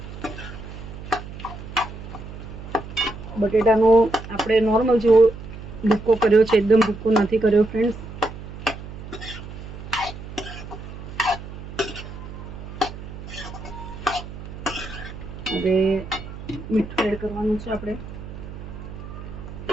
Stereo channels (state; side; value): noise; right; hum, 12 dB below the sound